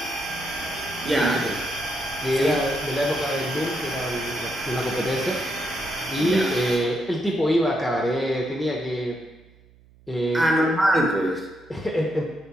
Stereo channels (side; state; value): right; noise; hum, 27 dB below the sound